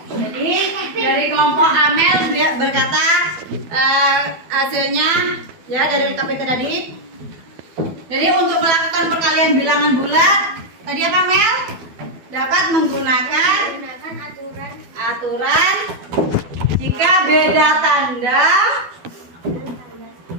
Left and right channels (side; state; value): left; late; 12 ms